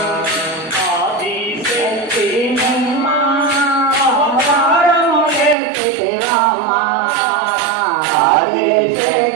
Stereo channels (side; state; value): left; drops out; at 5.6 s